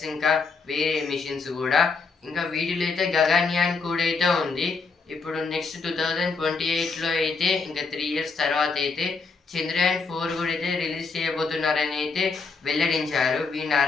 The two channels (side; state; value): right; quieter; 4.5 dB